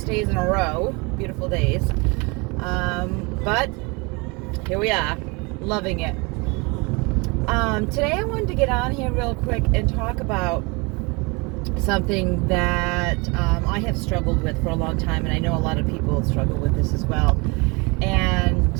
days in a row, beautiful days. But here we are, loving it. Today I wanted to get on here real quick and talk about something that I have struggled with for a long time, and I know a lot of people struggle with this as well.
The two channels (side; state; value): left; quieter; 28.4 dB